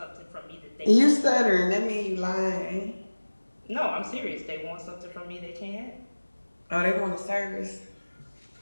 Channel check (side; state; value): both; inverted; correlation -1.00